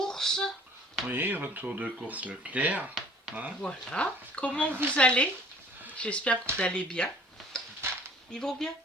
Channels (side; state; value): both; normal; correlation 0.52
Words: Oui, retour de course Leclerc. Hein. Voilà. Comment vous allez? J'espère que vous allez bien. Ils vont bien?